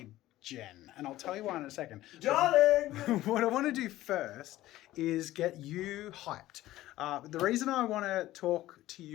Jen, and I'll tell you why in a second. Darling! What I want to do first is get you hyped. The reason I want to talk to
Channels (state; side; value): quieter; right; 15.5 dB